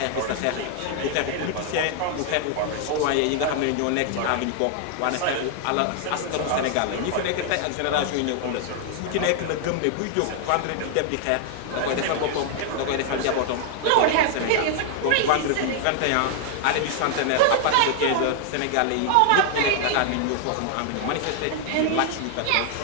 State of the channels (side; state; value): both; different; correlation 0.00